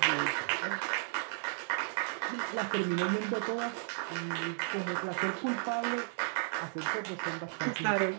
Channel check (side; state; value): left; silent; 55 dB below the other